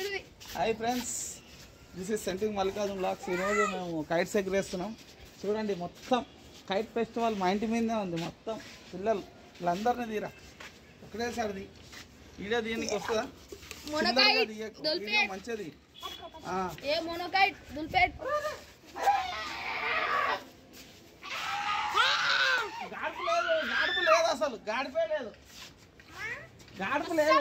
Hi friends, this is centering Mallikarjun blogs. ఈరోజు మేము kites ఎగరేస్తున్నాం. చూడండి, మొత్తం కైట్ ఫెస్టివల్ మా ఇంటి మీదే ఉంది. మొత్తం పిల్లలు వీళ్ళందరినీ తీరా ఒకటేసారి వీడియో దీనికి వస్తుందా? మంచిది. గాడుపు లేదు, గాడుపు లేదు, అసలు గాడిపే లేదు, గాడుపు లేదు.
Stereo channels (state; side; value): identical; both; correlation 1.00